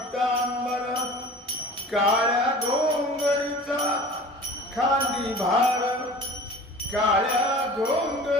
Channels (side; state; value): both; normal; correlation 0.41